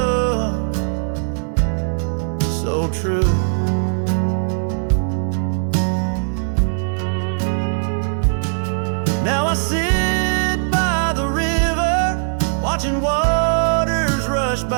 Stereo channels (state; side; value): silent; left; 66 dB below the other